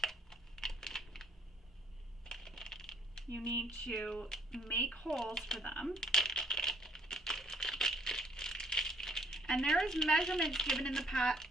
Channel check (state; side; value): normal; both; correlation 0.62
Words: you need to make holes for them. And there is measurements given in the